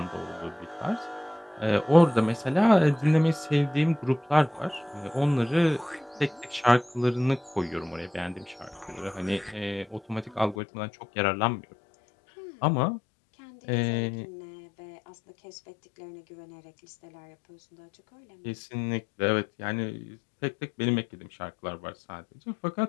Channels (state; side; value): drops out; right; at 10.6 s